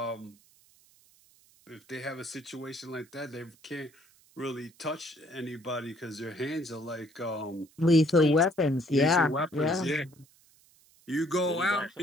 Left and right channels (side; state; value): right; noise; hiss, 30 dB below the sound